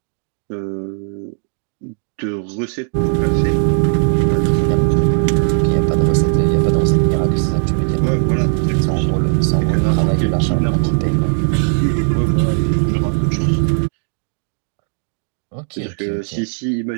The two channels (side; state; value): left; silent; 56 dB below the other